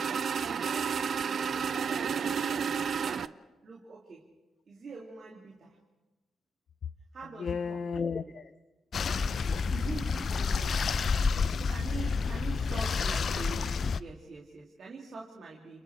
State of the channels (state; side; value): normal; both; correlation 0.82